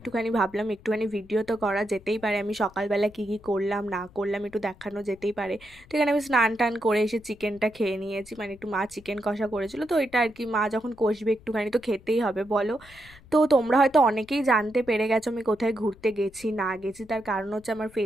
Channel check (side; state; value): left; noise; rumble, 24 dB below the sound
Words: ভাবলাম একটুখানি ভিডিও তো করা যেতেই পারে, আমি সকালবেলা কী কী করলাম না করলাম একটু দেখানো যেতেই পারে। তো এখানে আমি স্নান টান করে এসে চিকেনটা খেয়ে নিয়েছি, মানে একটু মা চিকেন কষা করেছিল, তো এটা আর কি মা যখন কষবে একটুখানি তো খেতেই হবে বলো। তো তোমরা হয়তো অনেকেই জানতে পেরে গেছো আমি কোথায় ঘুরতে গেছি না গেছি, তার কারণ হচ্ছে আমার